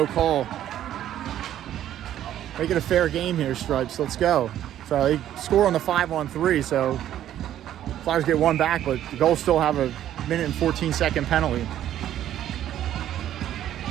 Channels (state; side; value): quieter; left; 11.7 dB